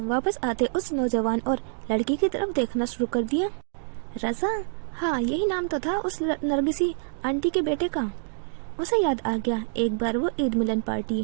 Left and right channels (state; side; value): silent; left; digital silence